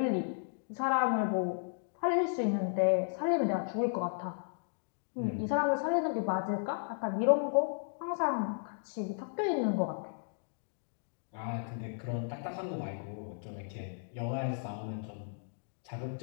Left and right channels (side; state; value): right; silent; digital silence